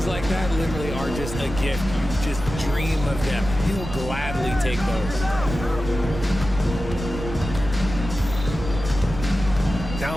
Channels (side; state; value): right; noise; rumble, 8 dB below the sound